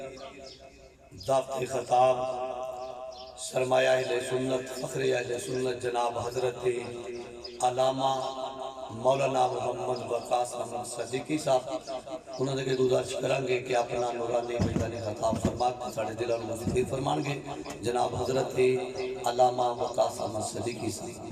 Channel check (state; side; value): identical; both; correlation 1.00